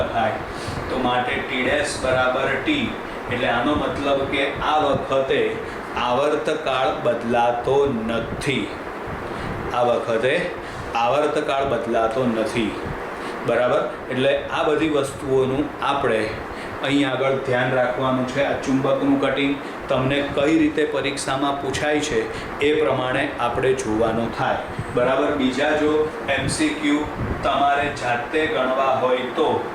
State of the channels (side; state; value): both; identical; correlation 1.00